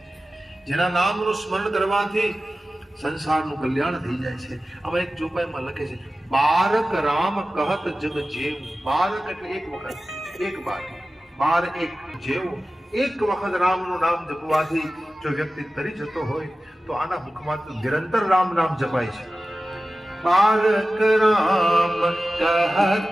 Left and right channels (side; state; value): both; normal; correlation 0.95